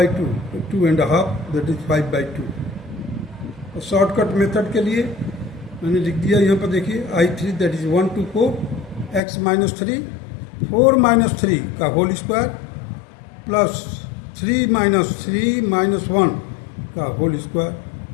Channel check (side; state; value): right; drops out; at 9.2 s